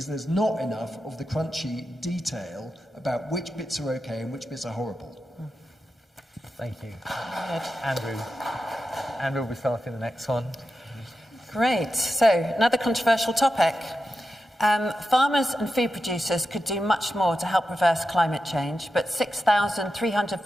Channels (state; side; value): normal; both; correlation 0.90